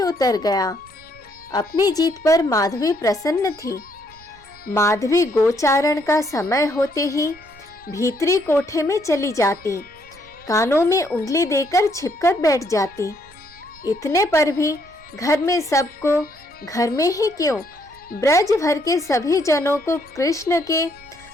उतर गया। अपनी जीत पर माधवी प्रसन्न थी। माधवी गोचारण का समय होते ही भीतरी कोठे में चली जाती, कानों में उंगली देकर छिपकर बैठ जाती। इतने पर भी घर में सबको, घर में ही क्यों, ब्रज भर के सभी जनों को कृष्ण के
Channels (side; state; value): right; noise; rumble, 26 dB below the sound